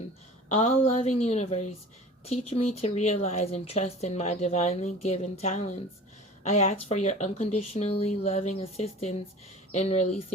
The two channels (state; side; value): normal; both; correlation 0.41